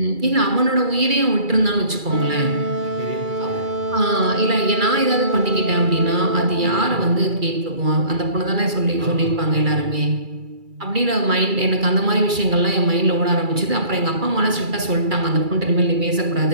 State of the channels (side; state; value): left; late; 2.3 ms